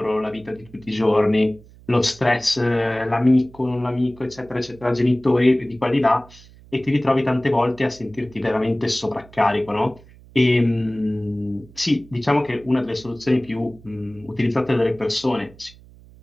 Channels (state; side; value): noise; right; hum, 23 dB below the sound